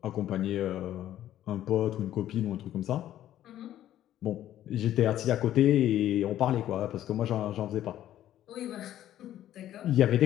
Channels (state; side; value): quieter; right; 12.3 dB